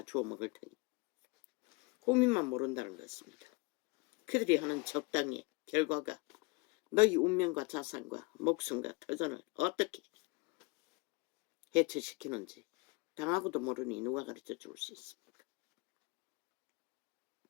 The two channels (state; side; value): quieter; right; 26.8 dB